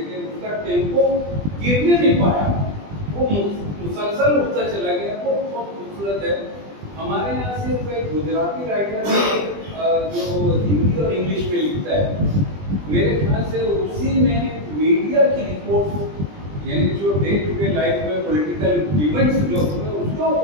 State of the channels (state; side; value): late; left; 20 ms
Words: उनका टेम्पो गिरने नहीं पाया, वो मुसलसल उठता चला गया। वो बहुत खूबसूरत है। हमारे यहाँ सिर्फ एक गुजराती राइटर जो हिंदी और इंग्लिश में लिखता है, मेरे ख्याल से उसी में मीडिया की रिपोर्ट, यानी जो डे टू डे लाइफ में पॉलिटिकल इवेंट्स जो उसके